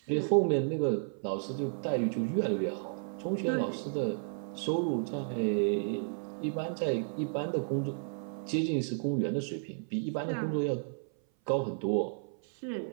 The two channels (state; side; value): silent; left; 56 dB below the other